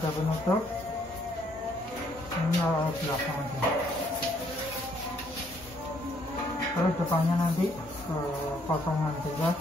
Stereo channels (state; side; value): normal; both; correlation 0.68